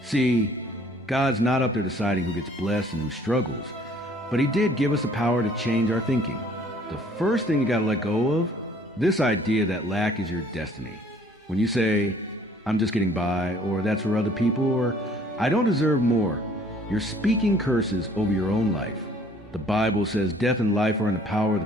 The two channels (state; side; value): normal; both; correlation 0.57